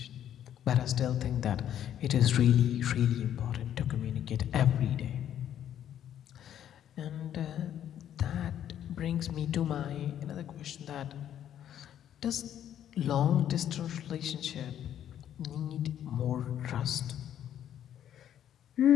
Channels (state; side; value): quieter; right; 10.4 dB